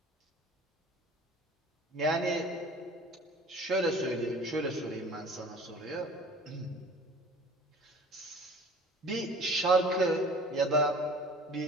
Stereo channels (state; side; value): normal; both; correlation 0.46